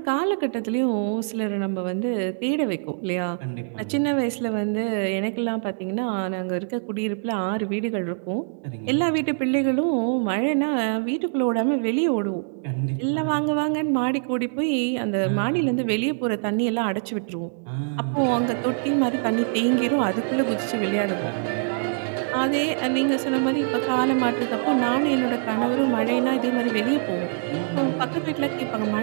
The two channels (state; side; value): silent; left; digital silence